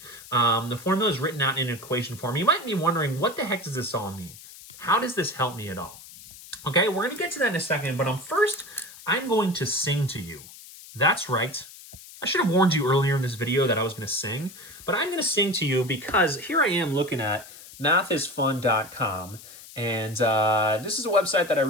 The formula is written out in equation form. You might be wondering, what the heck does this all mean? How does this help me at all? Okay, we're going to get to that in a second, but first, I'm going to sing to you. That's right. I should have warned you earlier in this video that I was going to sing, but I'm going to sing to you because here I am looking at mathisfun.com, and this is a website that I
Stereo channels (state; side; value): noise; left; hiss, 18 dB below the sound